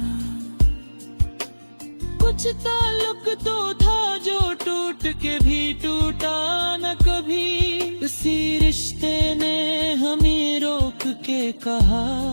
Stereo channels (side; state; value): both; inverted; correlation -1.00